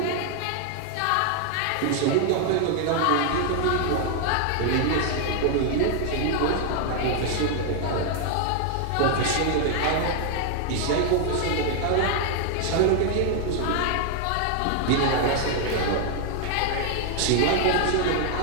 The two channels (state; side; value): different; both; correlation 0.00